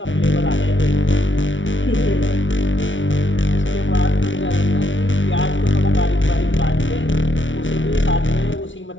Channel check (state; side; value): late; right; 0.56 ms